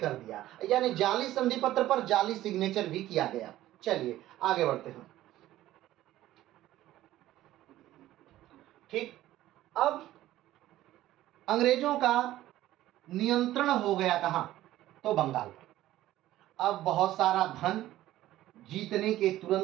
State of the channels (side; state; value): left; quieter; 14.6 dB